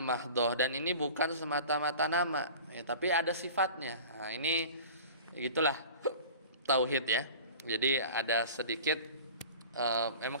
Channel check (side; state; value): both; inverted; correlation -0.40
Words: dan ini bukan semata-mata nama ya, tapi ada sifatnya. Nah, ini gitulah tauhid ya. Jadi ada sedikit memang